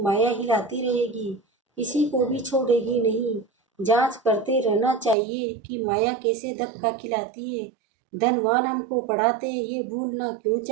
हिलाती रहेगी, किसी को भी छोड़ेगी नहीं। जांच करते रहना चाहिए कि माया कैसे धक्का खिलाती है। धनवान हमको पढ़ाते हैं, ये भूलना क्यों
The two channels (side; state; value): left; drops out; at 5.2 s